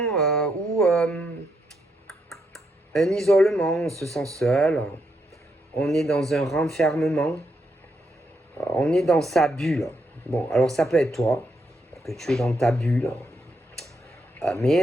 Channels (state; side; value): normal; both; correlation 0.80